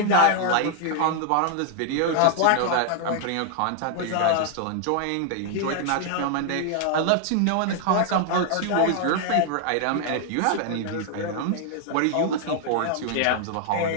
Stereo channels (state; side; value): different; both; correlation 0.00